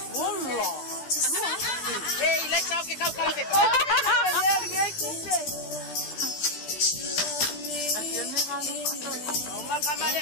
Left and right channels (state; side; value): late; right; 14 ms